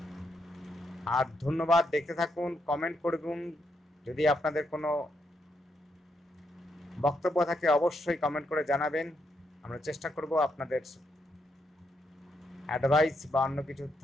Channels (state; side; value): normal; both; correlation 0.79